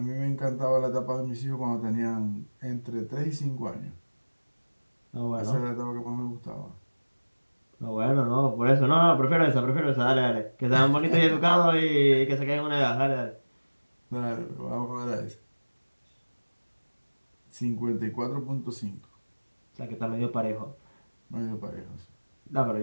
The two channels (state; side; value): inverted; both; correlation -1.00